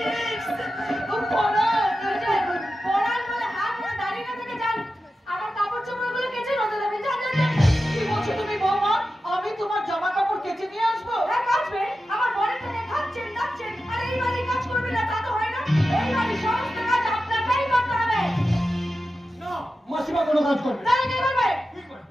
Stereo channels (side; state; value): both; normal; correlation 0.92